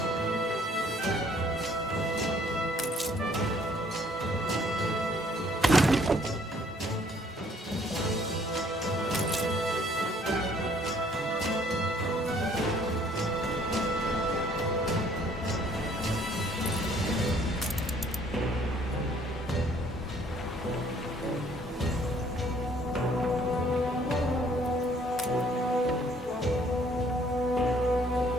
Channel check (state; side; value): normal; both; correlation 0.61